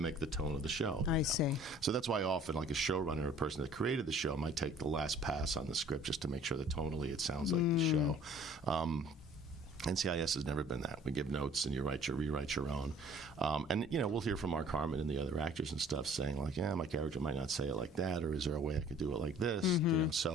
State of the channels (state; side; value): normal; both; correlation 0.52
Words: the tone of the show. I see. So that's why often, like a showrunner, a person that created the show, might take the last pass on the script just to make sure that tonally it sounds like the show. NCIS has never been that. We give notes and you rewrite your own. And, we'll hear from Mark Harmon and the other actors and stuff saying, like, "Yeah, my character might not say it like that," or "Is there a way I could do it like this?"